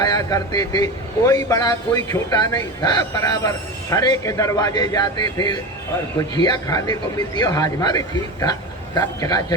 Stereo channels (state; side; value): normal; both; correlation 0.26